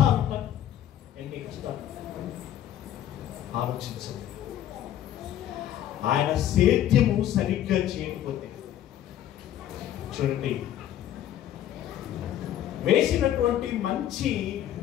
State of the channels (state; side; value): quieter; right; 11.5 dB